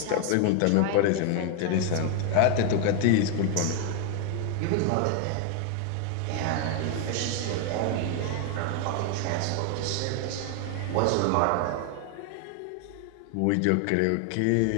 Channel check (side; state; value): both; different; correlation 0.00